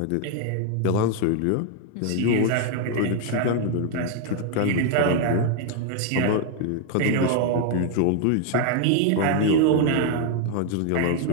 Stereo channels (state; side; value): different; both; correlation 0.00